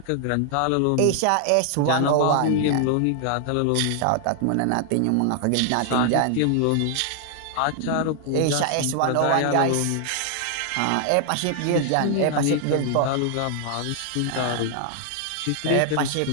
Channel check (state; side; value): different; both; correlation 0.00